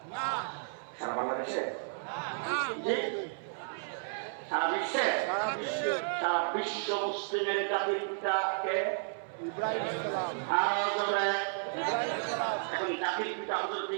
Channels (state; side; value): silent; left; 56 dB below the other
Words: সারা বাংলাদেশে, সারা বিশ্বে, সারা বিশ্ব মুসলিমের জাতির পিতাকে এখন জাতির পিতা হযরত